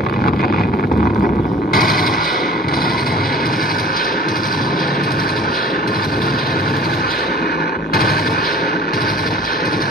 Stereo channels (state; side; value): normal; both; correlation 0.47